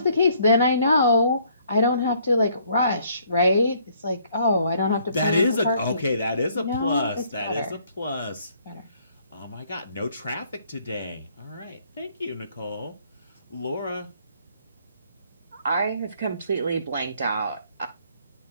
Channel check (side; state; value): both; inverted; correlation -0.64